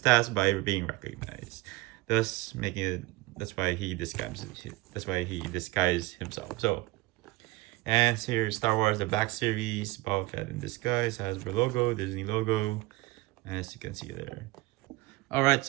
by being recognized. Thus, making it. That's why he disguises. That's why he disguised himself. So, and here's Star Wars: The Black Series. Boba Fett in disguise, Hasbro logo, Disney logo, as you can see there. All right,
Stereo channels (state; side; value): quieter; left; 21.0 dB